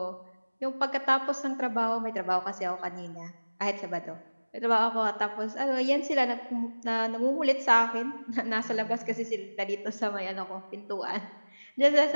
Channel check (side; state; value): both; inverted; correlation -1.00